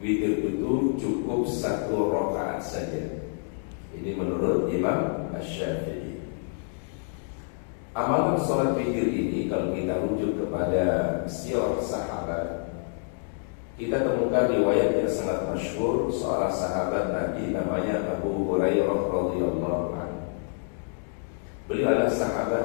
itu cukup 1 rakaat saja. Ini menurut Imam Syafi'i. Amalan sholat witir ini kalau kita rujuk kepada sirah sahabat, kita temukan riwayat yang sangat masyhur seorang sahabat Nabi namanya Abu Hurairah radhiyallahu anhu. Beliau adalah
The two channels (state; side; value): silent; right; 60 dB below the other